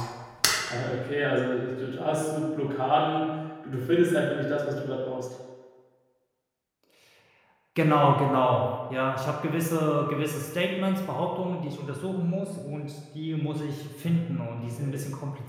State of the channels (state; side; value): identical; both; correlation 1.00